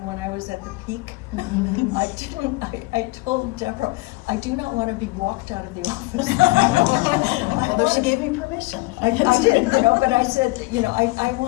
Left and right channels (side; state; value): right; quieter; 22.8 dB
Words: I was at the peak. I told Deborah, I do not want to be walked out of the office. Although she gave me permission. I did, but I said, I